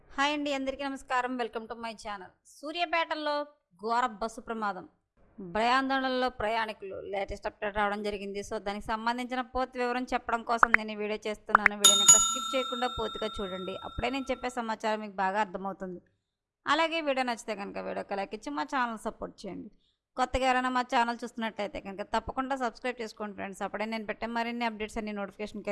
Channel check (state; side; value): identical; both; correlation 1.00